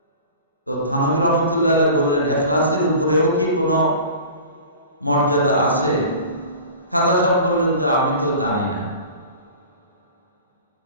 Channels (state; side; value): inverted; both; correlation -0.40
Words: তো থানভী রহমাতুল্লাহ আলাইহি বললেন, ইখলাসের উপরেও কি কোনো মর্যাদা আছে? খাজা সাহেব বললেন যে আমি তো জানি না।